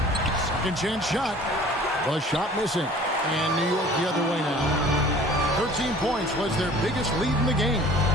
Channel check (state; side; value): normal; both; correlation 0.48